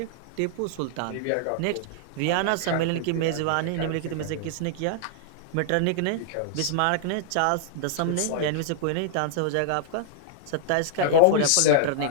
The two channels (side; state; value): both; different; correlation -0.01